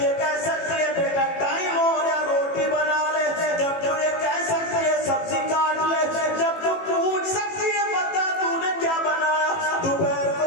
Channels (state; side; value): late; right; 18 ms